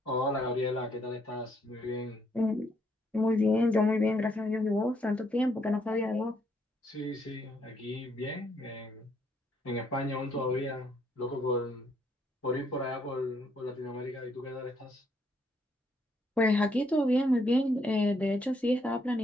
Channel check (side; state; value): both; normal; correlation 0.72